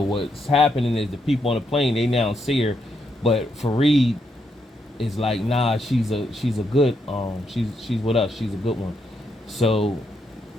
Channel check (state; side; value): normal; both; correlation 0.79